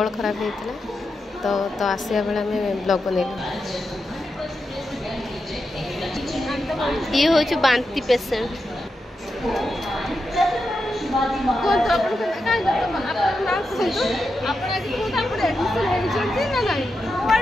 खराब होता तो आसिया बेले आम ब्लॉग बनैलु। ये हूँ बांती पेसेंट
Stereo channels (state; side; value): normal; both; correlation 0.88